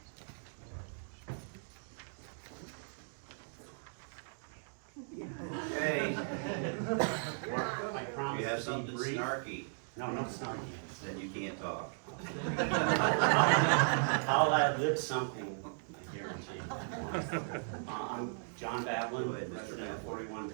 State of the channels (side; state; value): left; silent; digital silence